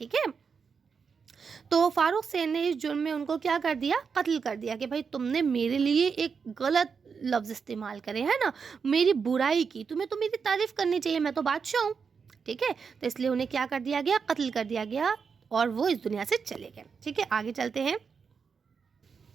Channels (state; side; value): quieter; left; 5.8 dB